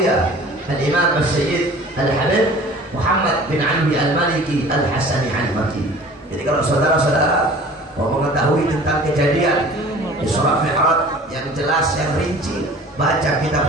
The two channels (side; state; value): both; normal; correlation 0.45